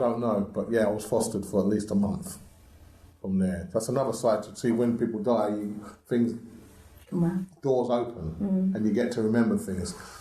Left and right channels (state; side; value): identical; both; correlation 1.00